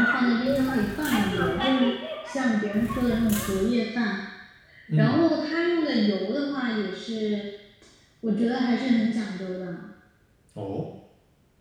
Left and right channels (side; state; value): both; identical; correlation 1.00